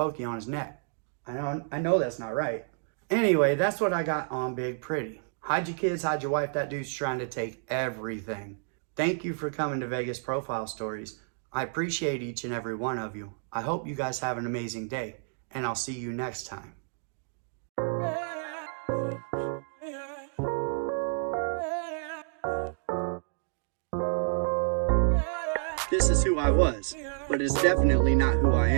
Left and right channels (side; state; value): left; silent; digital silence